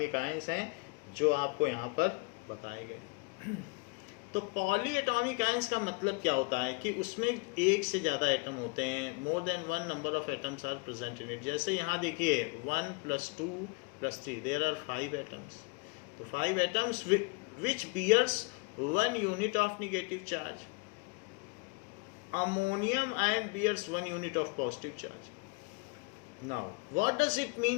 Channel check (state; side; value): quieter; right; 30.9 dB